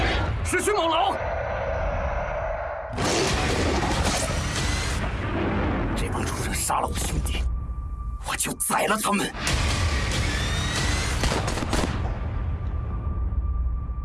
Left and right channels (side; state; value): both; identical; correlation 1.00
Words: 是迅猛龙！这帮畜生杀了我兄弟，我就宰了他们！